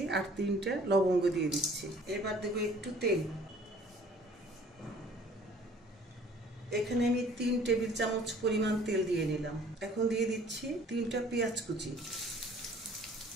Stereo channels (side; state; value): both; normal; correlation 0.54